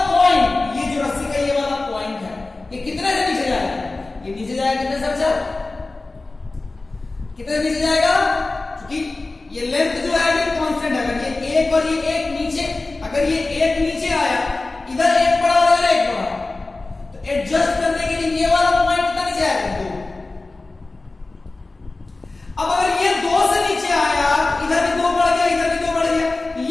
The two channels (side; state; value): right; quieter; 3.3 dB